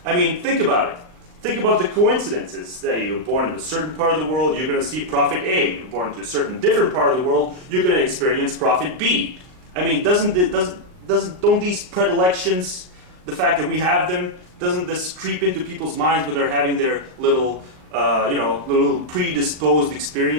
I mean, think about it. Think about the coincidences. Say you're born in a certain part of the world, you're going to see prophet A. You're born to a certain different part of the world, you're going to experience prophet B. I mean, don't these predilections, the fact that we have them, doesn't this creep into people's minds when they're having their little, you know, little predisposed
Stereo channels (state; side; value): late; left; 38 ms